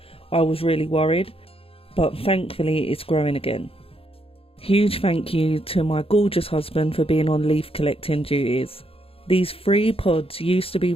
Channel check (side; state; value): right; late; 0.27 ms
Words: I was really worried, but thankfully it's growing again. Huge thank you to my gorgeous husband for being on leaf collecting duties. These 3 pods used to be